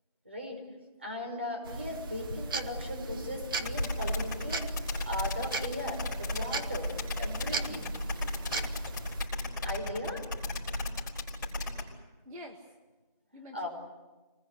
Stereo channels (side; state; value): both; inverted; correlation -0.50